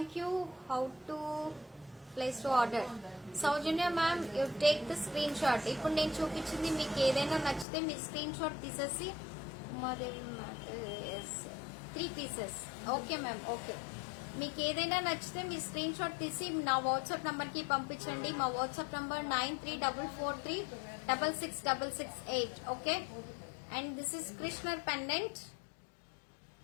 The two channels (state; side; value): drops out; right; at 7.7 s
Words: How to place to order? Saujanya ma'am, you take the screenshot. ఇప్పుడు నేను చూపించింది మీకు ఏదైనా నచ్చితే మీ screenshot తీసేసి Umadevi matte 3 pieces. Okay ma'am, okay. మీకు ఏదైనా నచ్చితే మీ స్క్రీన్ షాట్ తీసి నా వాట్సాప్ నంబర్ కి పంపించండి. మా WhatsApp number 9344366668. Okay. And this is Krishnar pendant.